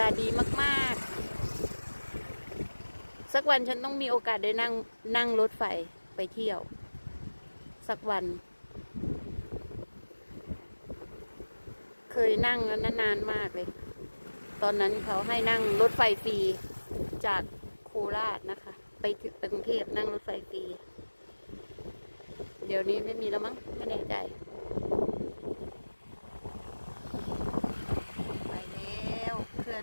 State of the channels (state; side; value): inverted; both; correlation -1.00